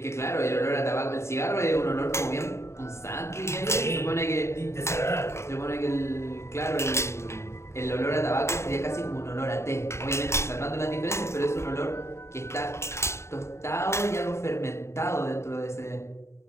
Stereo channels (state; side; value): late; right; 0.13 ms